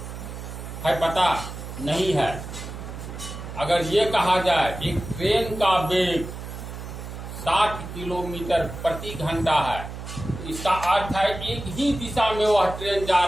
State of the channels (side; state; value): right; noise; hum, 10 dB below the sound